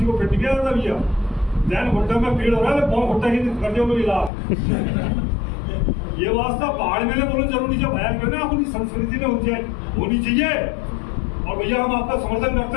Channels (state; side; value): drops out; right; at 4.3 s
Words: को फिट किया जाता भैया, जैन घुट्टे में पीड़ हो रहा है, पाँव घुट्टे की कर दिया इलाज। ये वास्ता पहाड़ में बोलना जरूरी है, बयान करना अपनी संस्कृति में होनी चाहिए। और भैया हम आपका समर्थन